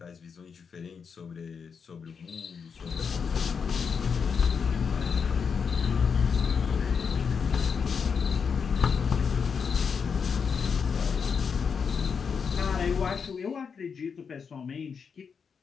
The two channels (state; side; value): quieter; right; 6.1 dB